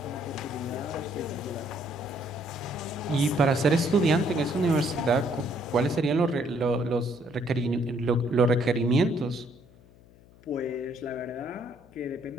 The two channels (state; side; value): noise; left; hum, 25 dB below the sound